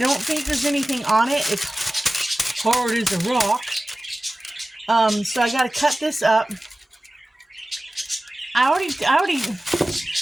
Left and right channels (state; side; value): normal; both; correlation 0.96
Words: think there's anything on it. It's hard as a rock. So I got to cut this up. I